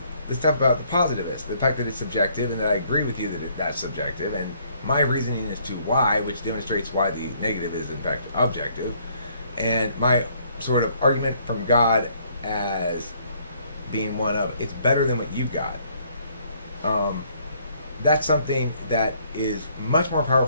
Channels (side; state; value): both; inverted; correlation -0.65